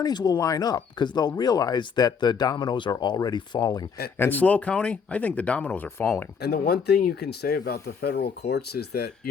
will line up because they'll realize that the dominoes are already falling. And SLO County, I think the dominoes are falling. And the one thing you can say about the federal courts is that,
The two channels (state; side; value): quieter; right; 6.1 dB